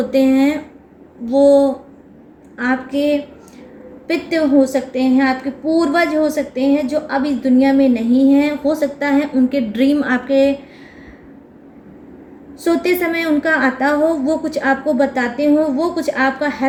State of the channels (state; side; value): identical; both; correlation 1.00